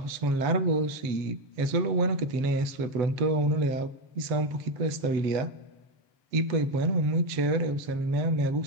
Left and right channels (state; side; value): late; left; 8.0 ms